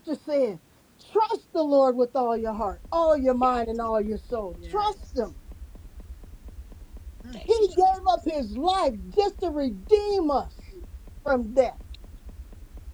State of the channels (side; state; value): both; identical; correlation 1.00